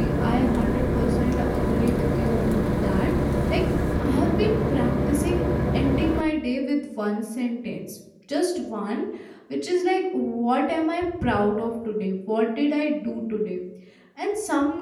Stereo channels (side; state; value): both; identical; correlation 1.00